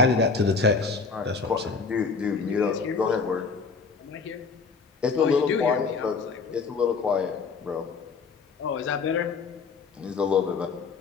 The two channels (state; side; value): quieter; right; 4.9 dB